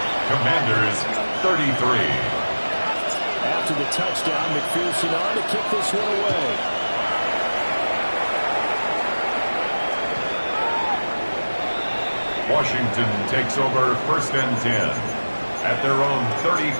Commanders 33. After the touchdown, McPherson on to kick this one away. Washington takes over first and 10 at their own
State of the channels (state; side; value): inverted; both; correlation -1.00